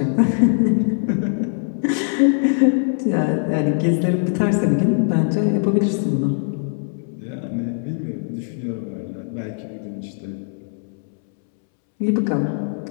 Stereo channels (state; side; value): silent; right; 65 dB below the other